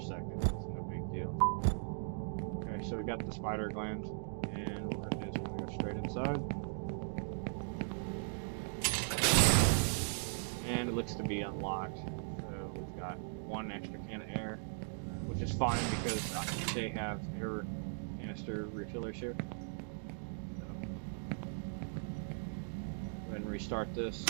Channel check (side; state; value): left; silent; digital silence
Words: no big deal. Okay, so we got the spider gland, and what we're going to do is we're going to go straight inside. And it looks to be unlocked. So we've got one extra can of air, which is fine because they have air canister refillers here. So, go ahead and restart this.